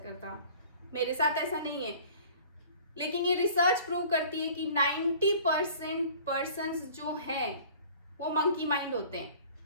मेरे साथ ऐसा नहीं है। लेकिन ये रिसर्च प्रूव करती है कि 90% पर्सन्स जो हैं वो मंकी माइंड होते हैं।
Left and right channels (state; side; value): inverted; both; correlation -0.48